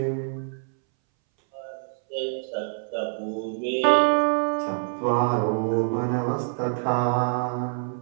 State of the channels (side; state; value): left; silent; 61 dB below the other